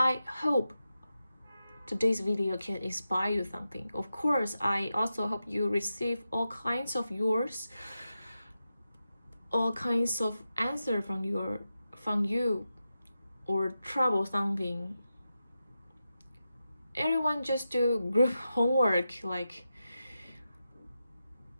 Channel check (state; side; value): inverted; both; correlation -0.90